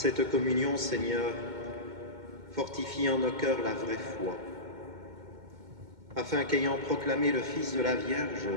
communion, Seigneur, fortifie en nos cœurs la vraie foi, afin qu'ayant proclamé le Fils de la Vierge,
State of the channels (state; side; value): late; left; 2.2 ms